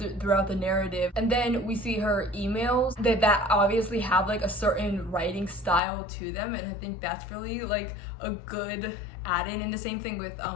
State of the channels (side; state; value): right; drops out; at 5.8 s